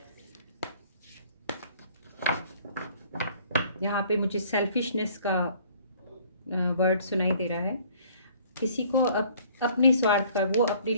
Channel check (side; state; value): both; inverted; correlation -0.56